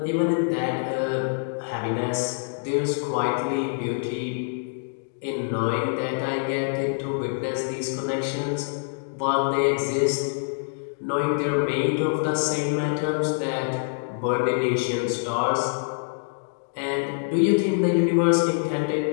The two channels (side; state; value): right; silent; digital silence